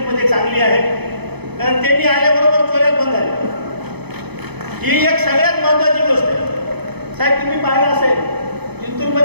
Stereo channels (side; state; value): left; late; 0.98 ms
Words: चांगली आहे कारण त्यांनी आल्याबरोबर चोऱ्या बंद झाल्या। ही एक सगळ्यात महत्वाची गोष्ट आहे। साहेब तुम्ही पाहिलं असेल